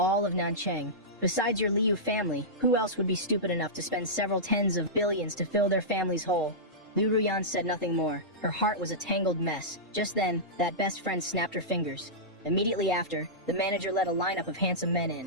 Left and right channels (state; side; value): normal; both; correlation -0.15